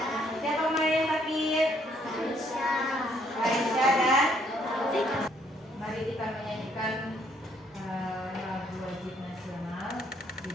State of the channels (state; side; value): normal; both; correlation 0.68